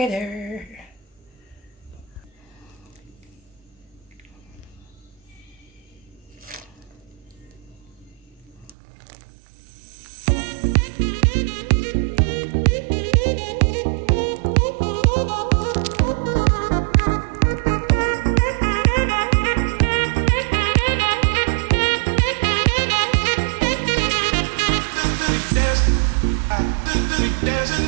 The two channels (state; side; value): drops out; left; at 8.7 s